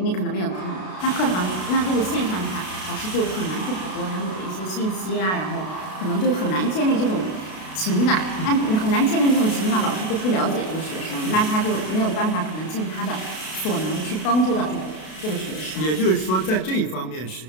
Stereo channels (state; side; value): late; right; 32 ms